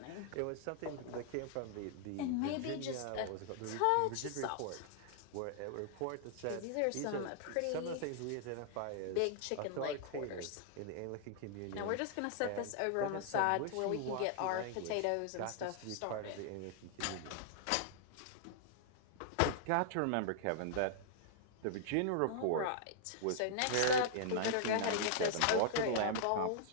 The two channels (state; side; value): different; both; correlation -0.01